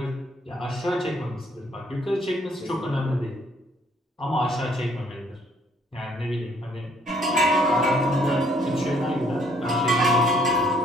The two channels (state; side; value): normal; both; correlation 0.65